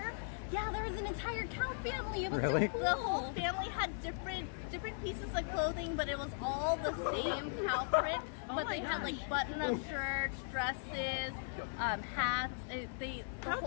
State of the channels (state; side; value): silent; right; 52 dB below the other